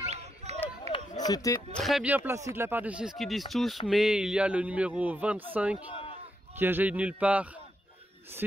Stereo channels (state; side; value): normal; both; correlation 0.81